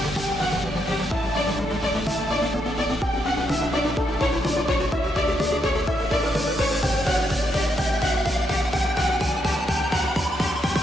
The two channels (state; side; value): normal; both; correlation 0.79